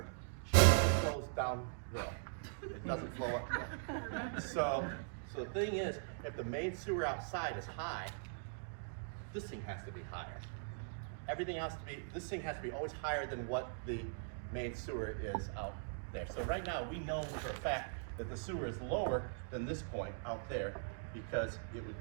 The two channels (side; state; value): left; silent; digital silence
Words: it flows downhill. It doesn't flow uphill. So the thing is, if the main sewer outside is high, this thing has to be higher. This thing has to be always higher than what the main sewer is out there. So right now, we know for a fact that the sewer is lower than this point out there because it would